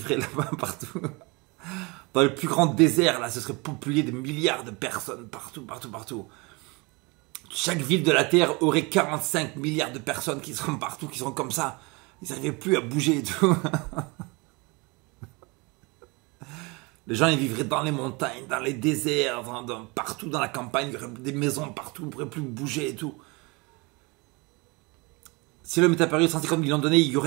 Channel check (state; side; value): quieter; left; 27.2 dB